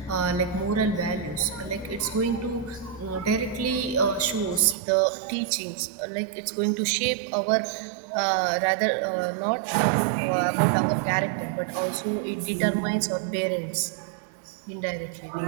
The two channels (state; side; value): drops out; left; at 4.8 s